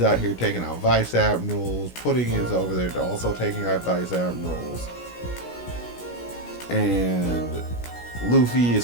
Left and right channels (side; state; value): right; late; 17 ms